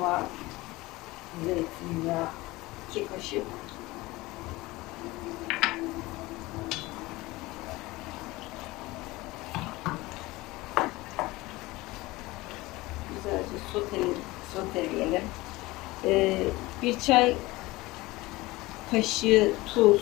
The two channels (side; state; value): right; quieter; 20.4 dB